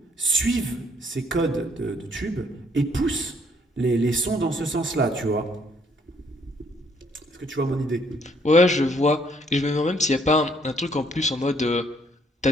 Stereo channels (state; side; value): normal; both; correlation 0.66